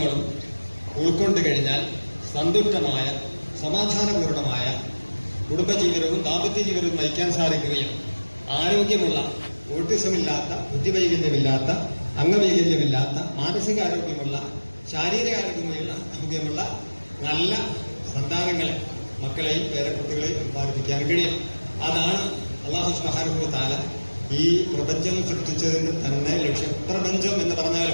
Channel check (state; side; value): inverted; both; correlation -1.00